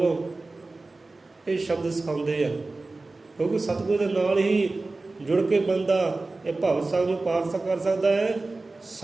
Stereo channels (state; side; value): quieter; left; 3.3 dB